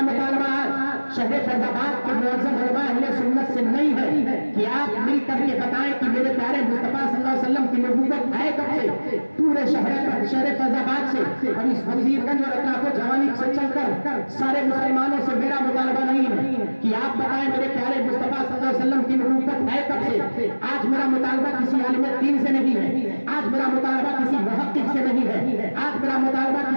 مطالبہ شہر فیض آباد کے معزز علماء اہل سنت سے نہیں ہے کہ آپ مل کر کے بتائیں کہ میرے پیارے مصطفیٰ صلی اللہ علیہ وسلم کی نبوت ہے کب سے. پورے شہر فیض آباد سے اور اس وزیر گنج اور اطراف و جوانی سے چل کر سارے مسلمانوں سے میرا مطالبہ نہیں ہے کہ آپ بتائیں میرے پیارے مصطفیٰ صلی اللہ علیہ وسلم کی نبوت ہے کب سے. آج میرا مطالبہ کسی عالم دین سے نہیں ہے، آج میرا مطالبہ کسی محقق سے نہیں ہے، آج میرا مطالبہ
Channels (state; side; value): inverted; both; correlation -1.00